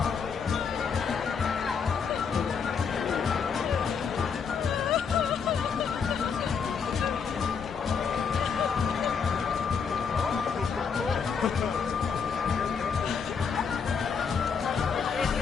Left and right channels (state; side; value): quieter; right; 6.2 dB